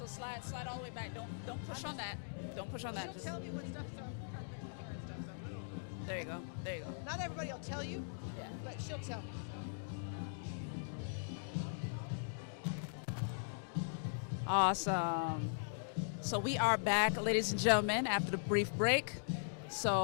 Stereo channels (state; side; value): silent; right; digital silence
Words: slide all the way back. Don't push on that. Don't push on that. She'll Just, tell me what stuff, so I'm trying to fix my hair and stuff. So. there you go. There you go. Not everybody will tell you, Yeah. but she'll tell you. Awesome. So we are back, ladies and gentlemen, after the brief break.